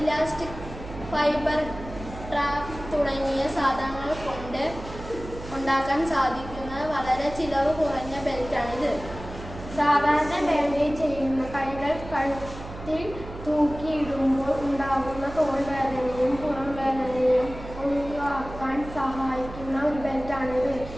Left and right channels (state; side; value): noise; right; hum, 12 dB below the sound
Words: ഫൈബർ ട്രാപ്പ് തുടങ്ങിയ സാധനങ്ങൾ കൊണ്ട് ഉണ്ടാക്കാൻ സാധിക്കുന്ന വളരെ ചിലവ് കുറഞ്ഞ ബെൽറ്റാണിത്. സാധാരണ ബാൻഡേജ് ചെയ്യുന്ന കൈകൾ കഴുത്തിൽ തൂക്കിയിടുമ്പോൾ ഉണ്ടാകുന്ന തോൾ വേദനയും പുറം വേദനയും ഒഴിവാക്കാൻ സഹായിക്കുന്ന ഒരു ബെൽറ്റാണിത്.